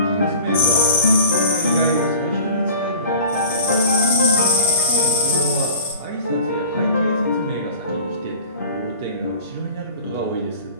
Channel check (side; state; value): both; inverted; correlation -0.41